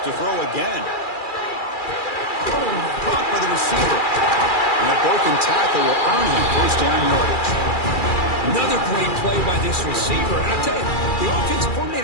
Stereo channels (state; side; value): late; right; 2.4 ms